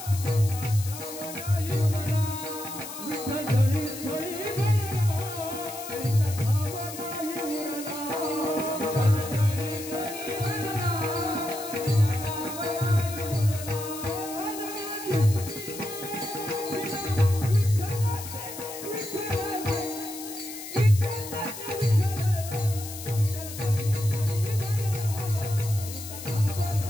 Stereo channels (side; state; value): left; noise; hiss, 11 dB below the sound